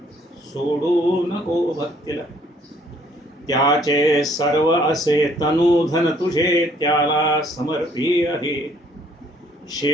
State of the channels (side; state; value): both; normal; correlation 0.63